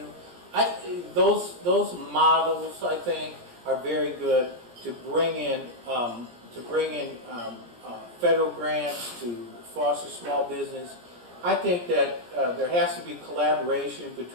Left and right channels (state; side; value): late; left; 17 ms